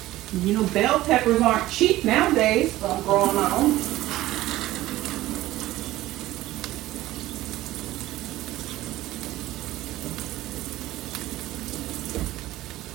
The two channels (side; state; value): left; quieter; 16.2 dB